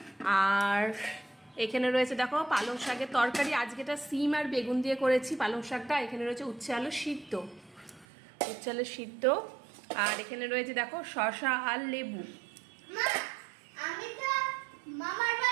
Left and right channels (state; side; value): drops out; left; at 8.1 s